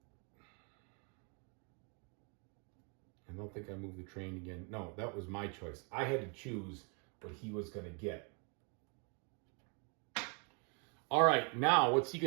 I don't think I moved the train again. No, that was my choice. I had to choose what he was going to get. All right, now what's he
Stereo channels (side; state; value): left; quieter; 36.5 dB